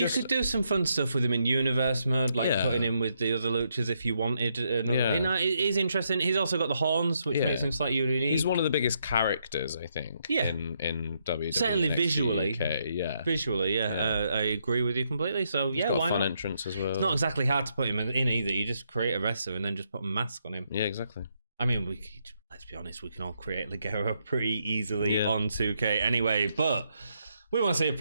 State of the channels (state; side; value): inverted; both; correlation -0.77